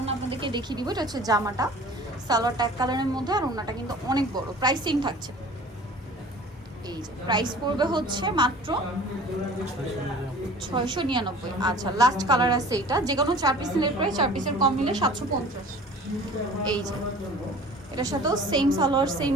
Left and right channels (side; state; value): both; normal; correlation 0.44